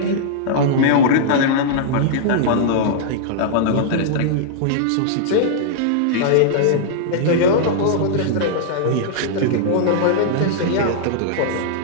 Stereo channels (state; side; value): different; both; correlation -0.02